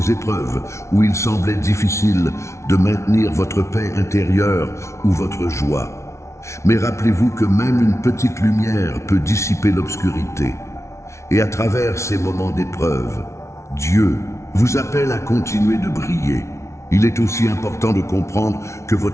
épreuves où il semblait difficile de maintenir votre paix intérieure ou votre joie. Mais rappelez-vous que même une petite lumière peut dissiper l'obscurité. Et à travers ces moments d'épreuve, Dieu vous appelle à continuer de briller. Il est aussi important de comprendre que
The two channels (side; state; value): right; late; 0.13 ms